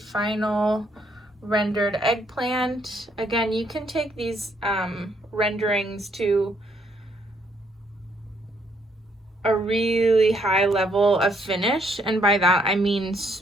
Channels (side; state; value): both; normal; correlation 0.70